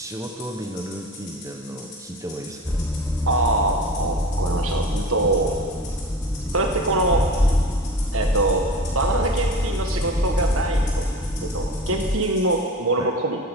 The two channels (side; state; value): both; normal; correlation 0.35